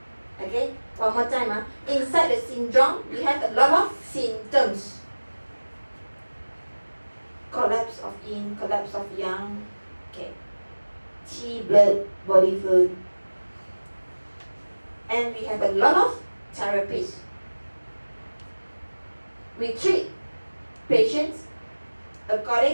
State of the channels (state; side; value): inverted; both; correlation -1.00